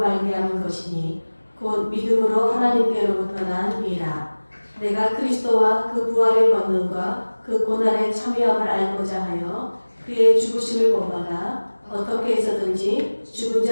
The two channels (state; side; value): inverted; both; correlation -1.00